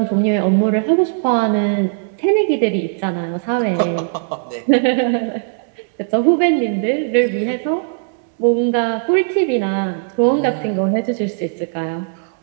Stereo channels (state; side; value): silent; left; 67 dB below the other